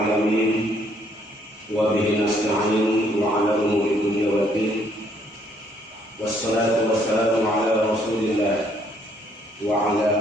wa bihi nasta'in wa ala umuri dunya waddin. Wassalatu wassalamu ala rasulillah wa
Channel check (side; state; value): both; normal; correlation 0.67